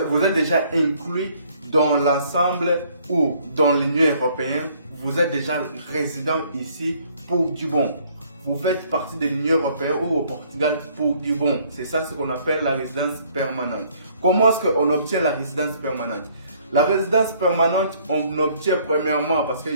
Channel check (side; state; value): both; inverted; correlation -0.62